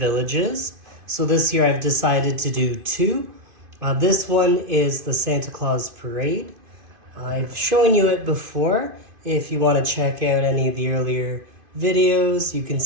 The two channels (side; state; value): left; late; 2.5 ms